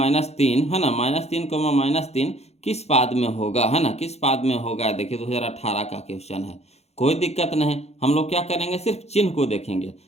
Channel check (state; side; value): late; right; 0.31 ms